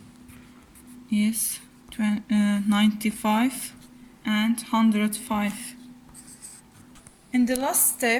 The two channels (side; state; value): both; identical; correlation 1.00